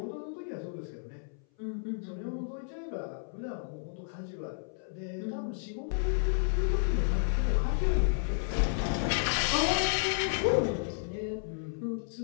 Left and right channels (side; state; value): right; silent; 56 dB below the other